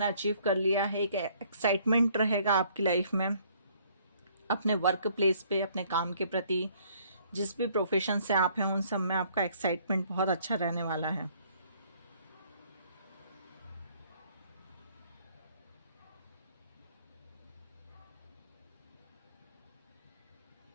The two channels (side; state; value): both; inverted; correlation -0.62